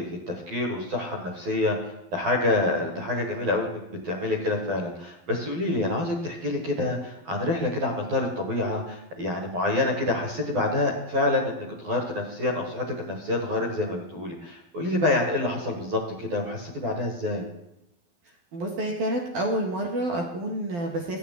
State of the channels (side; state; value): left; late; 12 ms